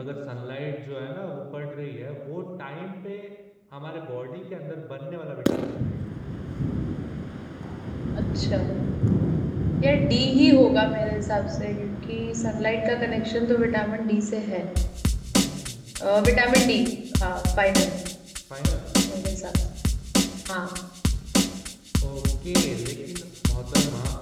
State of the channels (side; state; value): both; identical; correlation 1.00